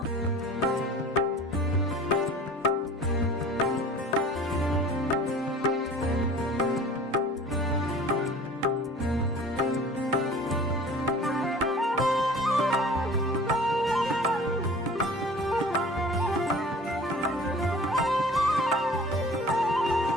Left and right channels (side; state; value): both; normal; correlation 0.44